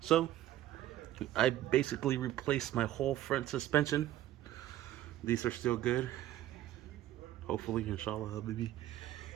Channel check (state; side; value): quieter; left; 13.5 dB